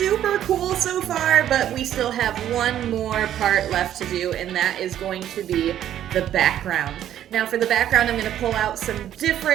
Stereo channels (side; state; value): left; quieter; 11.2 dB